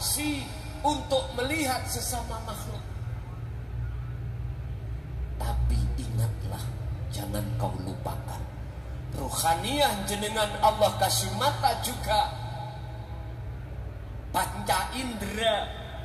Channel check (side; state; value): both; identical; correlation 1.00